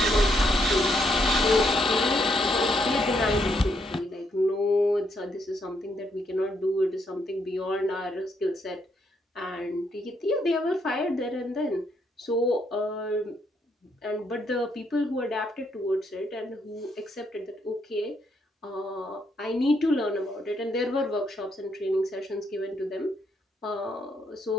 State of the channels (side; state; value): both; normal; correlation 0.75